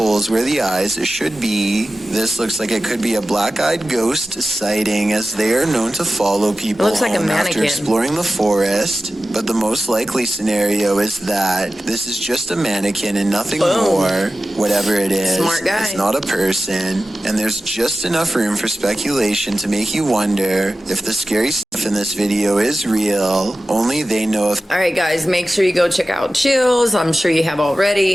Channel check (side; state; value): both; normal; correlation 0.94